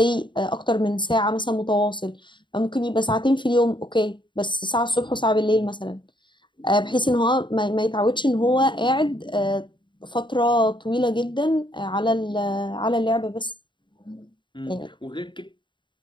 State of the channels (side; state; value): right; late; 0.23 ms